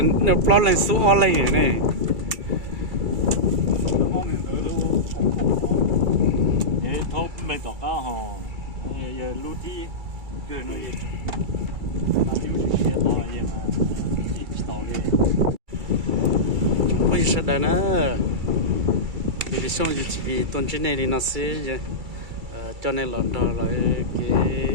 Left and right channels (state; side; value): late; left; 2.3 ms